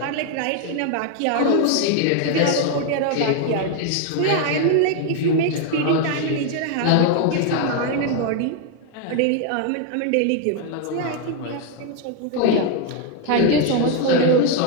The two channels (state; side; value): different; both; correlation 0.01